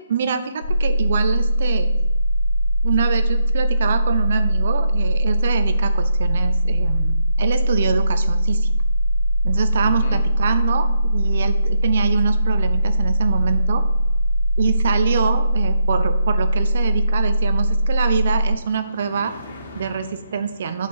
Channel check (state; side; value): inverted; both; correlation -0.80